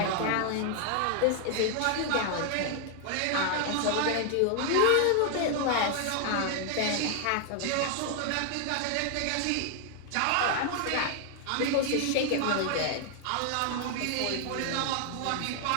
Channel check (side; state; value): both; different; correlation 0.00